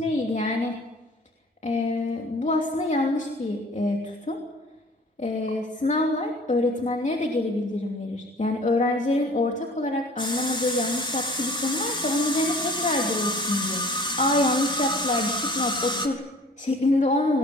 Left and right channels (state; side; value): normal; both; correlation 0.48